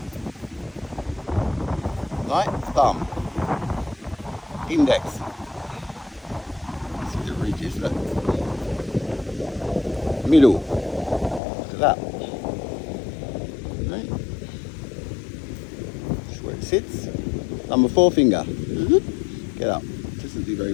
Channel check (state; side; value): drops out; right; at 11.4 s